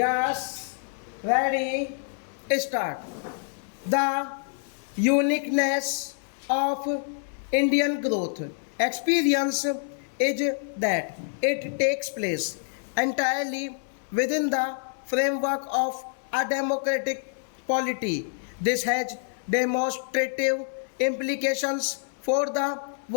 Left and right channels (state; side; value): silent; right; digital silence